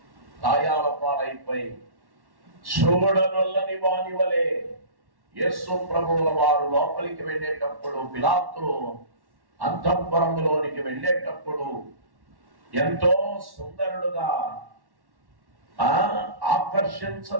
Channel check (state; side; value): late; left; 1.1 ms